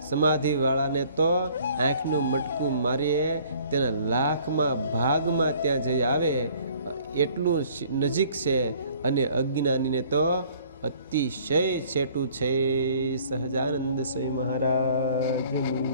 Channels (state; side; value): inverted; both; correlation -0.56